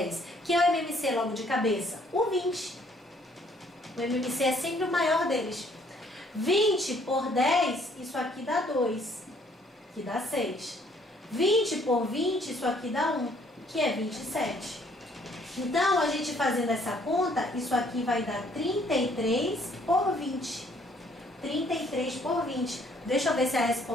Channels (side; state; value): both; normal; correlation 0.63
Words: Que é o MMC logo de cabeça? O 20. O MMC é sempre o maior deles. 20 por 10, isso aqui dá 2, que dá 6. 20 por 20, isso aqui dá 1, que é 27. Então, a gente fazendo essa conta, isso aqui vai dar 33 por 20. 33 por 20. Deixa eu ver se a